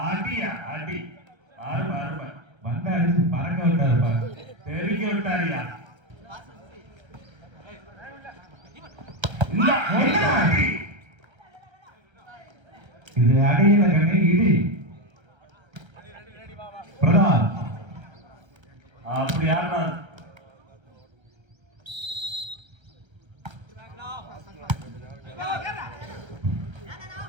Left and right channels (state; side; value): late; left; 1.3 ms